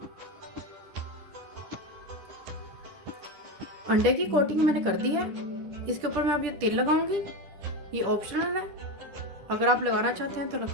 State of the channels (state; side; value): late; left; 10 ms